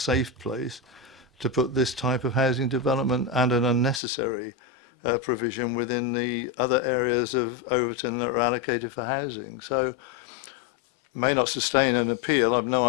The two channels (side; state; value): right; drops out; at 4.0 s